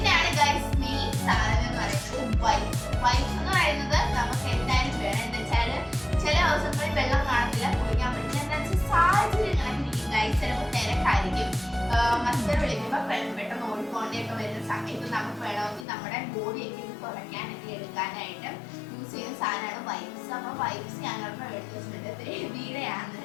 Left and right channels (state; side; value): drops out; right; at 15.9 s